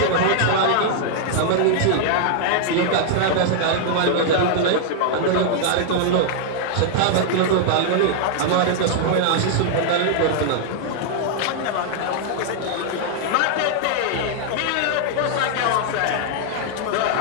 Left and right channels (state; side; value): different; both; correlation -0.01